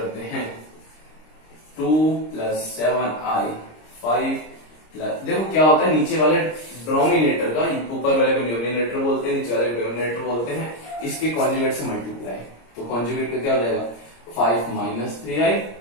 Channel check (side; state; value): right; late; 26 ms